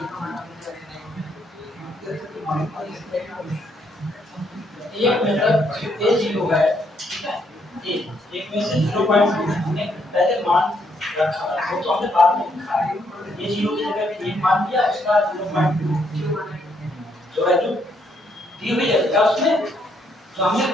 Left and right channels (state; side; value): normal; both; correlation 0.73